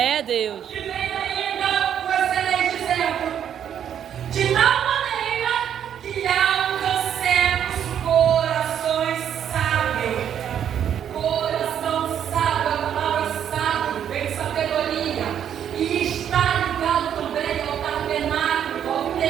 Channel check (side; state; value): left; quieter; 9.3 dB